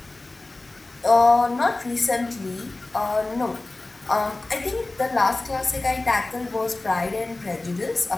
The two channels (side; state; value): right; quieter; 3.0 dB